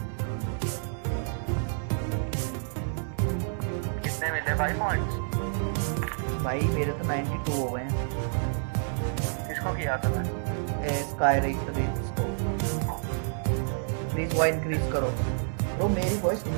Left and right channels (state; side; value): silent; left; 59 dB below the other